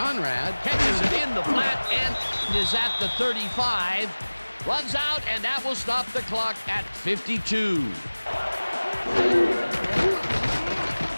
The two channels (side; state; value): both; inverted; correlation -1.00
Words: catches it in the flat and is at the 35. Runs out, and that will stop the clock at 52.